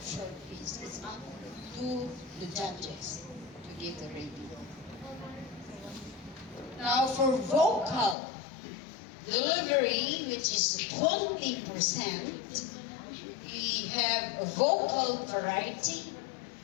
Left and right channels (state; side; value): drops out; right; at 8.2 s